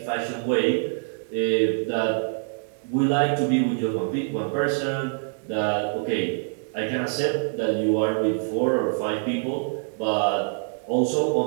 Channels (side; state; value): left; silent; 62 dB below the other